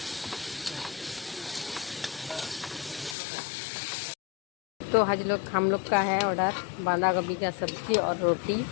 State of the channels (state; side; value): drops out; right; at 3.2 s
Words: तो हम लोग का है ऑर्डर बांधा गोभी का सब्जी और रोटी।